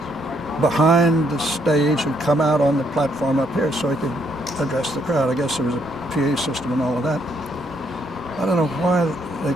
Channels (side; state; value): both; normal; correlation 0.72